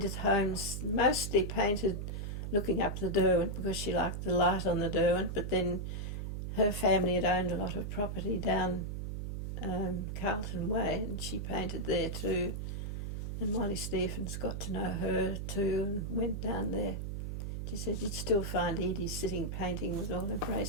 Holmes mostly painted looking up the Derwent because she liked the light on the Derwent, but then her family had owned a lot of property down Carlton Way, and she painted there too. And Molly Stephens got to know her too and went down there. She said you'd still find Edie sitting painting with all her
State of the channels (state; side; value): noise; right; hum, 4 dB below the sound